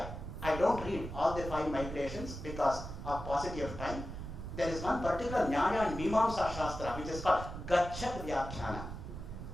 I don't read all the 5 migrations because of paucity of time. There is one particular Nyaya and Mimamsa Shastra which is called Gachat Vyakhyana.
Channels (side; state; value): right; noise; rumble, 8 dB below the sound